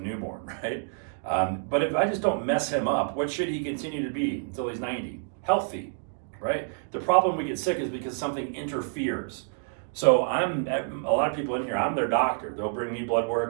right? But if I just don't mess him up, what should he continue to be until he's 90? Healthy, right? The problem we get sick is because something interferes. So a lot of people in here, I'm their doctor. They'll bring me blood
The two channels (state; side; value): silent; left; digital silence